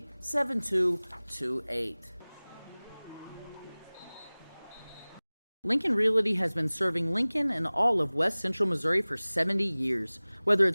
Lincoln Realty has been serving Lincoln and all of West Central Missouri for 70 years. Whether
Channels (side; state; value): both; inverted; correlation -1.00